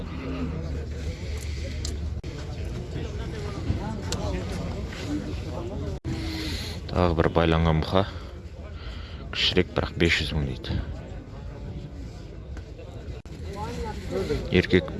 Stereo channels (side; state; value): both; identical; correlation 1.00